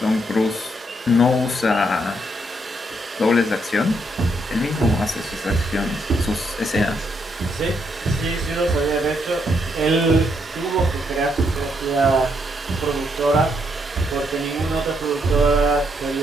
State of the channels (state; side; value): normal; both; correlation 0.76